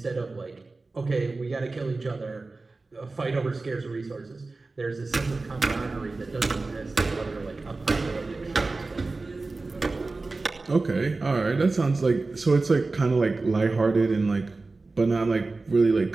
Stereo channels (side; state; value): left; quieter; 3.5 dB